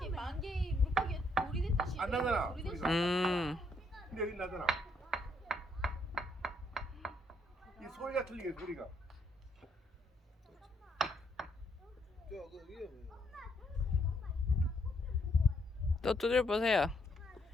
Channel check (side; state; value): both; normal; correlation 0.73